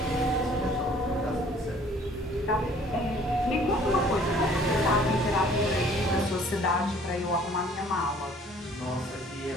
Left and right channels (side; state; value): both; normal; correlation 0.56